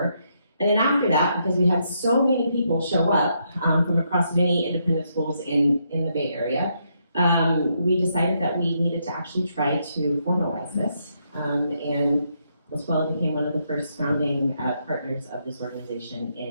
And then after that, because we had so many people show up from across many independent schools in the Bay Area, we decided that we needed to actually try to formalize this. And La Scuola became one of the first founding partners of this organization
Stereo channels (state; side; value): inverted; both; correlation -0.77